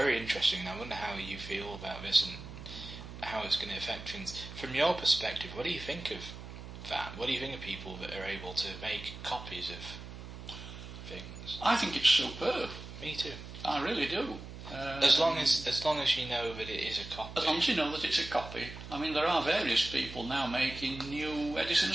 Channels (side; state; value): right; noise; hum, 12 dB below the sound